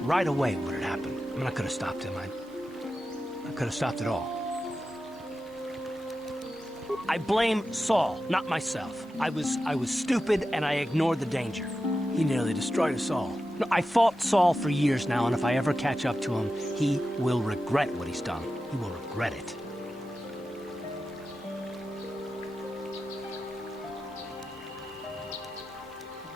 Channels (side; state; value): both; normal; correlation 0.91